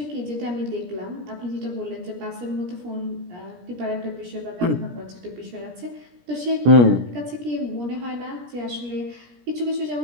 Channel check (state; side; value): late; left; 17 ms